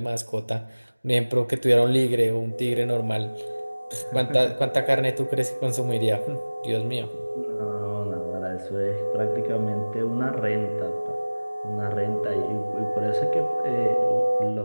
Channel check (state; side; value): inverted; both; correlation -1.00